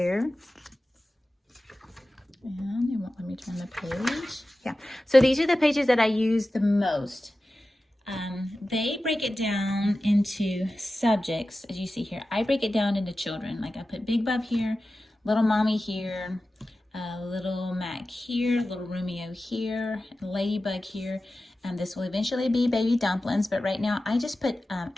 And it won't let me turn the page. Yeah, so these are the pages that I use the most. They break it down into subjects, as you see here. I break it down into children. Like I put Big Bub here, Little Mommy here, Little Mac here, Little Romeo here, Ladybug here. This will eventually be Baby Dumplings, but right now I just put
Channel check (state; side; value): normal; both; correlation 0.94